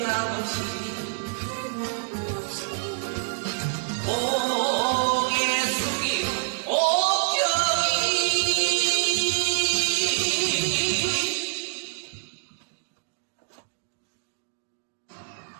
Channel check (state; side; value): silent; left; digital silence